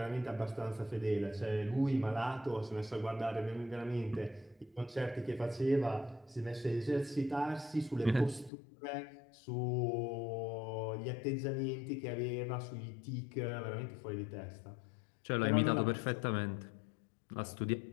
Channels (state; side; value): drops out; right; at 8.5 s